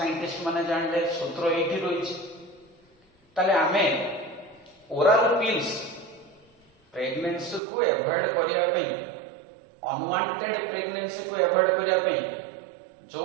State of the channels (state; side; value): drops out; left; at 7.6 s